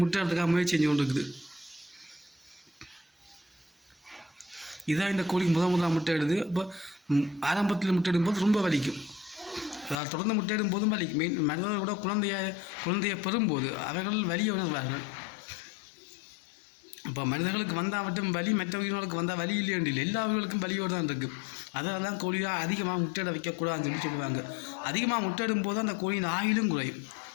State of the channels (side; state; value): right; drops out; at 10.0 s